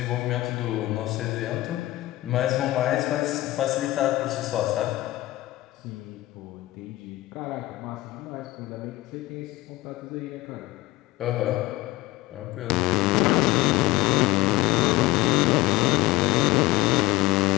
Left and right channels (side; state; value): right; quieter; 17.9 dB